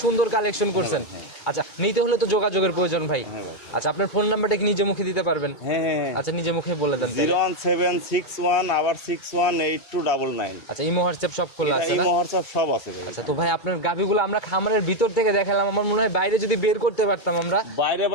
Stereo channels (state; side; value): late; right; 2.2 ms